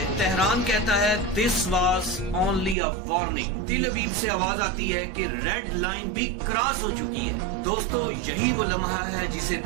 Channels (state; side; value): drops out; left; at 2.8 s